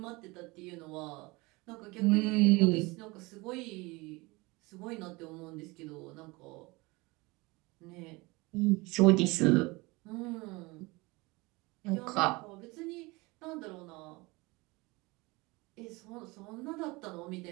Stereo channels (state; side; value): quieter; left; 24.0 dB